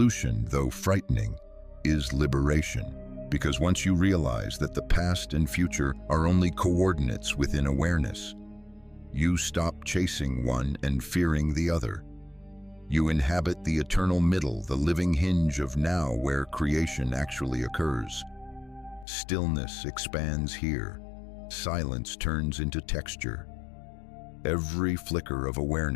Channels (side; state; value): right; drops out; at 19.1 s